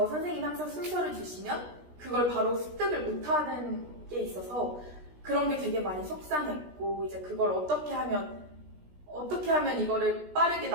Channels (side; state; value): left; late; 17 ms